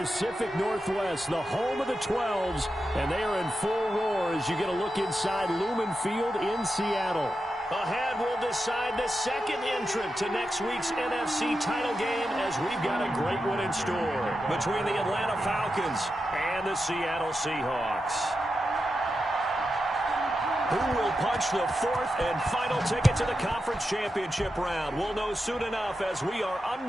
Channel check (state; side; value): normal; both; correlation 0.89